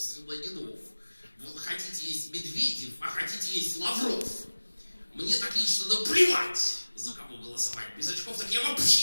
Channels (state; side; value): inverted; both; correlation -1.00